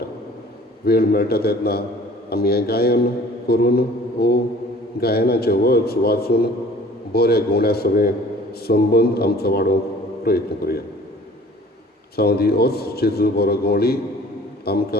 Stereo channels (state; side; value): normal; both; correlation 0.49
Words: वेळ मेळटा तेन्ना आमी हें गायन करून वो गायनाचे वर्ड्स वाचून बऱ्या गवण्या सगळें संबंद आमचो वाडोवंक प्रयत्न करुया सावंदी होच जेजू बरो गवळी